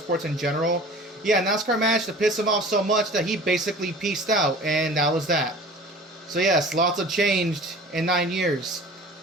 in general. Yeah, NASCAR managed to piss him off so much that he basically peaced out, and that was that. So yes, lots have changed in 9 years.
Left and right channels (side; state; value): both; normal; correlation 0.42